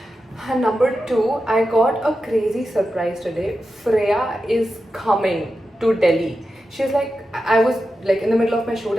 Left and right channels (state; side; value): normal; both; correlation 0.90